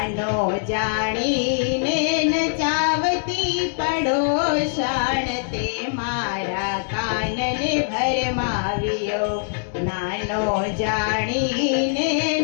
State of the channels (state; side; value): silent; right; 64 dB below the other